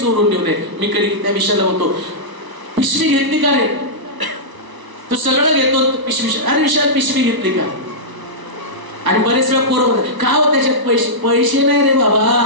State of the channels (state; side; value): late; left; 1.0 ms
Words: ठेवू नये. मी कधी त्या विषयाला म्हणतो पिशवी घेतली का रे? तू सगळं घेतो पिशवी. अरे विशाल पिशवी घेतली का? आणि बरेच वेळा पोरं का हो त्याच्यात पैसे नाही रे बाबा.